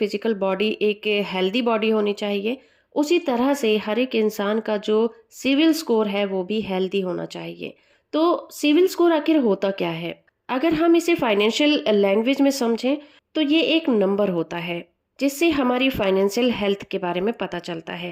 बॉडी एक हेल्दी बॉडी होनी चाहिए, उसी तरह से हर एक इंसान का जो सिविल स्कोर है वो भी हेल्दी होना चाहिए। तो सिविल स्कोर आखिर होता क्या है? अगर हम इसे फाइनेंशियल लैंग्वेज में समझें तो ये एक नंबर होता है जिससे हमारी फाइनेंशियल हेल्थ के बारे में पता चलता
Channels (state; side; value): identical; both; correlation 1.00